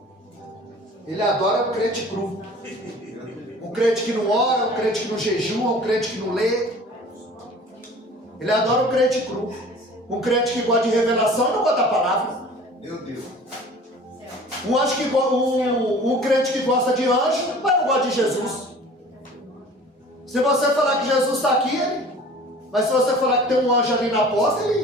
Ele adora um crente cru. Um crente que não ora, um crente que não jejua, um crente que não lê. Ele adora um crente cru. Um crente que gosta de revelação e não gosta da palavra. Meu Deus. Um crente que gosta de anjo, mas não gosta de Jesus. Se você falar que Jesus está aqui, mas se você falar que tem um anjo ali na porta,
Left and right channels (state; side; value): normal; both; correlation 0.45